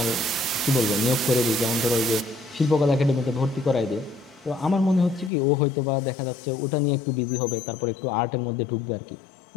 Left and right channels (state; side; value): drops out; right; at 5.3 s